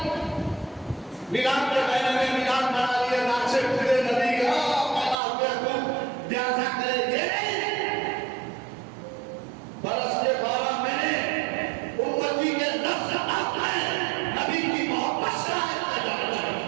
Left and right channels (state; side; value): drops out; left; at 5.2 s